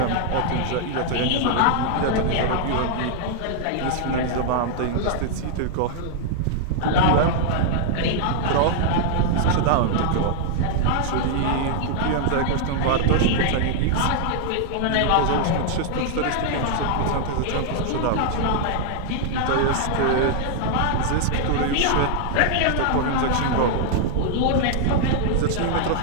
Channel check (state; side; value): different; both; correlation -0.01